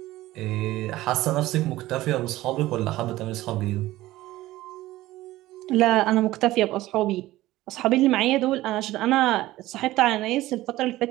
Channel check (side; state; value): left; quieter; 16.7 dB